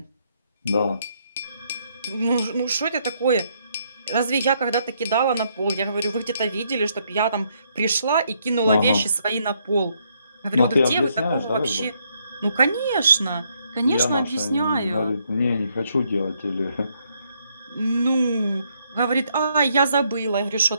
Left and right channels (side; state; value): both; inverted; correlation -0.73